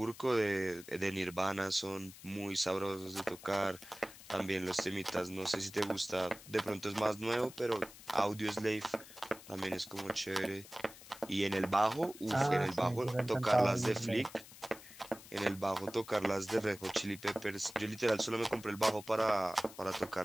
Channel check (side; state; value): left; noise; hiss, 18 dB below the sound